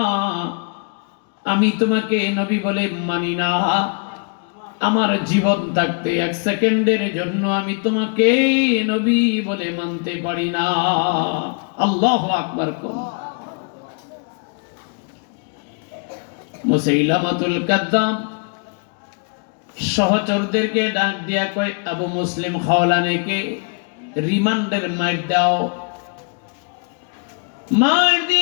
আমি তোমাকে নবী বলে মানি না। আমার জীবন থাকতে এক সেকেন্ডের জন্য আমি তোমাকে নবী বলে মানতে পারি না। আল্লাহু আকবার। মুসাইলামাতুল কাযযাব সহচরদেরকে ডাক দিয়া কয়, আবু মুসলিম খাওলানীকে রিমান্ডের মার দাও। মার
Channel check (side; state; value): right; quieter; 39.8 dB